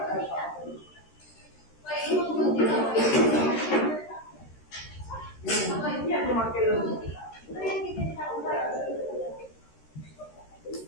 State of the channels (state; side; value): late; right; 13 ms